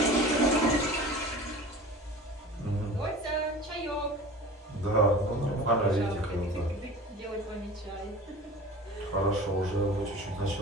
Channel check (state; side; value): normal; both; correlation 0.38